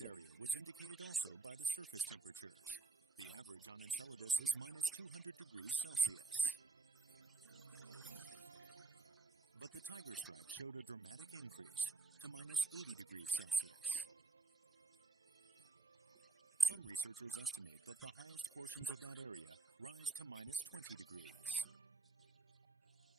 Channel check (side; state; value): left; quieter; 3.8 dB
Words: area was indicated also by the surface temperatures. The average on Enceladus is minus 200 degrees Celsius. But the tiger stripe showed a dramatic increase to minus 80 degrees Celsius. Some researchers estimate that the highest portions of that area rise to minus 20 degrees.